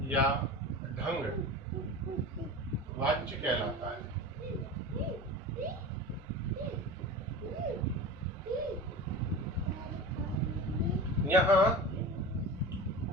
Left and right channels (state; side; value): normal; both; correlation 0.31